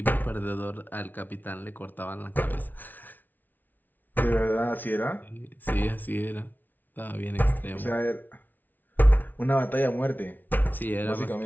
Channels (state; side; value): late; right; 0.084 ms